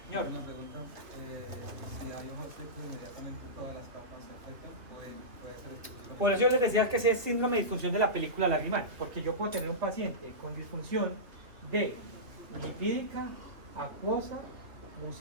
Señor. Una pregunta, si hay ojos secos inmediatamente todas las capas se afectan, puede ser el por eso yo les decía que ese es síndrome de disfunción de la película lagrimal, porque yo puedo tener un paciente con disfunción de lipídica, acuosa,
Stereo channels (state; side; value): late; left; 2.6 ms